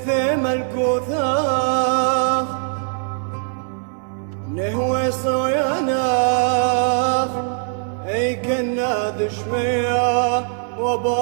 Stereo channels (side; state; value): left; silent; digital silence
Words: الكوثاخ نهوي صياناخ اي كنا دشمية